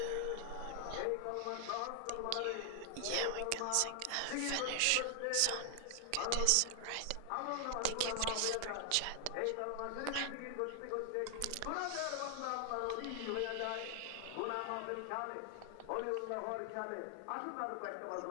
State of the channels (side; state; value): both; different; correlation 0.00